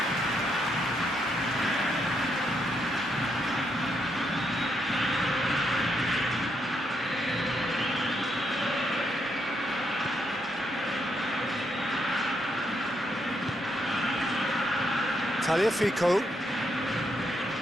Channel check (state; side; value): normal; both; correlation 0.78